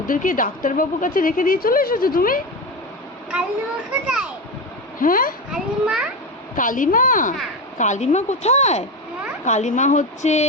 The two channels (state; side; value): normal; both; correlation 0.19